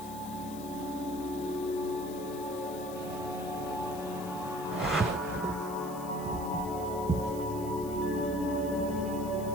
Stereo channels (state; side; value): noise; left; hiss, 15 dB below the sound